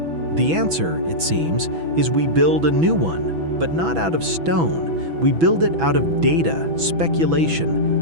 The answer, it seems, is we build a new one, but not out of stone. We build it out of data,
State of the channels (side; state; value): left; late; 6.1 ms